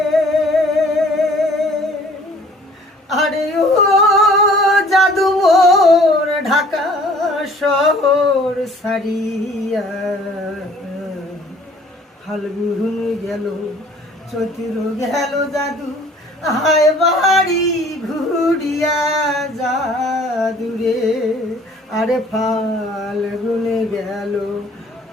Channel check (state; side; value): normal; both; correlation 0.53